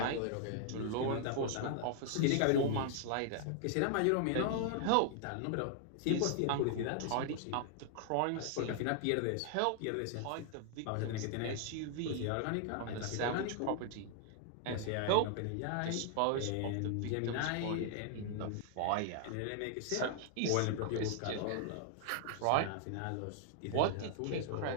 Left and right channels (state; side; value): different; both; correlation 0.00